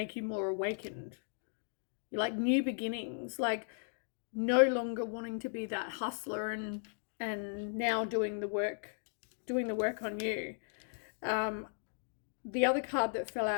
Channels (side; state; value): right; silent; digital silence